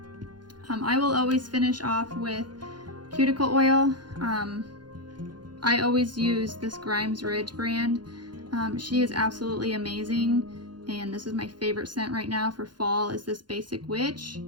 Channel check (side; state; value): left; late; 0.71 ms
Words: I will always finish off with cuticle oil. I always use this Grimes Ridge brand. She is absolutely amazing, and this is my favorite scent right now for fall is this Basic Witch.